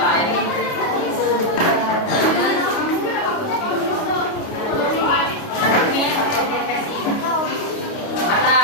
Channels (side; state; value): right; late; 29 ms